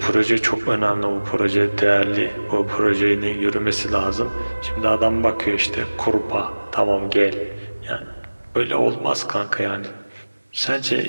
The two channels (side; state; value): both; inverted; correlation -1.00